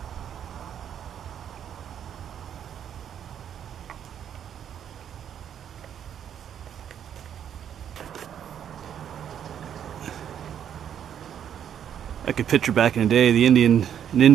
I could picture back in the day an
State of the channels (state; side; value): quieter; left; 9.2 dB